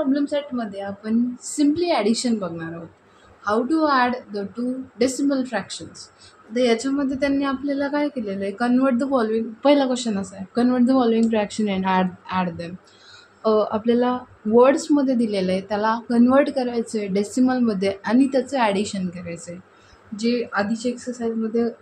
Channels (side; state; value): both; identical; correlation 1.00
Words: set मध्ये आपण simply addition बघणार आहोत. How to add the two decimal fractions. तर याच्यामध्ये त्यांनी आपल्याला काय केलेलं आहे, कन्वर्ट द फॉलोइंग, पहिला क्वेश्चन असा आहे, convert the following fraction and add them. आपल्याला वर्ड्समध्ये दिलेलं आहे, त्याला कन्वर्ट करायचं आहे डेसिमलमध्ये आणि त्याचं ॲडिशन करायचं आहे. जे आधीच्या एक्सरसाइजमध्ये